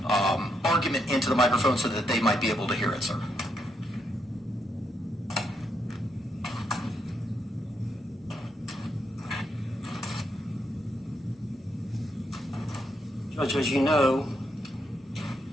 argument into the microphone so that they might be able to hear it, sir. Judge, as you know,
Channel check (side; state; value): both; normal; correlation 0.79